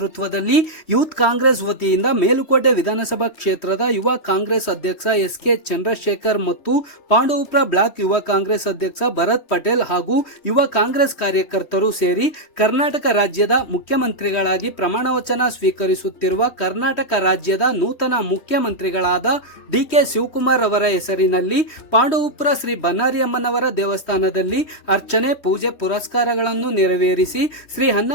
ಯೂತ್ ಕಾಂಗ್ರೆಸ್ ವತಿಯಿಂದ ಮೇಲುಕೋಟೆ ವಿಧಾನಸಭಾ ಕ್ಷೇತ್ರದ ಯುವ ಕಾಂಗ್ರೆಸ್ ಅಧ್ಯಕ್ಷ ಎಸ್.ಕೆ. ಚಂದ್ರಶೇಖರ್ ಮತ್ತು ಪಾಂಡವಪುರ ಬ್ಲಾಕ್ ಯುವ ಕಾಂಗ್ರೆಸ್ ಅಧ್ಯಕ್ಷ ಭರತ್ ಪಟೇಲ್ ಹಾಗೂ ಯುವ ಕಾಂಗ್ರೆಸ್ ಕಾರ್ಯಕರ್ತರು ಸೇರಿ ಕರ್ನಾಟಕ ರಾಜ್ಯದ ಮುಖ್ಯಮಂತ್ರಿಗಳಾಗಿ ಪ್ರಮಾಣವಚನ ಸ್ವೀಕರಿಸುತ್ತಿರುವ ಕರ್ನಾಟಕ ರಾಜ್ಯದ ನೂತನ ಮುಖ್ಯಮಂತ್ರಿಗಳಾದ ಡಿ.ಕೆ. ಶಿವಕುಮಾರ್ ಅವರ ಹೆಸರಿನಲ್ಲಿ ಪಾಂಡವಪುರ ಶ್ರೀ ಬನ್ನಾರಿ ಅಮ್ಮನವರ ದೇವಸ್ಥಾನದಲ್ಲಿ ಅರ್ಚನೆ, ಪೂಜೆ, ಪುರಸ್ಕಾರಗಳನ್ನು ನೆರವೇರಿಸಿ ಶ್ರೀ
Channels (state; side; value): late; right; 3.1 ms